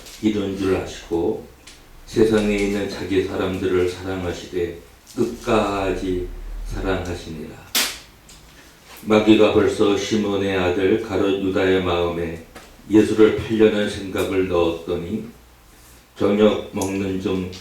이른 줄 아시고 세상에 있는 자기 사람들을 사랑하시되 끝까지 사랑하시니라. 마귀가 벌써 시몬의 아들 가룟 유다의 마음에 예수를 팔려는 생각을 넣었더니 저녁 먹는 중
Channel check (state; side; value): identical; both; correlation 1.00